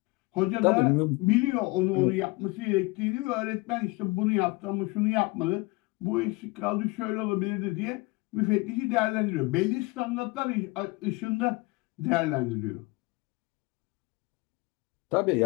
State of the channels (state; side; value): quieter; right; 24.0 dB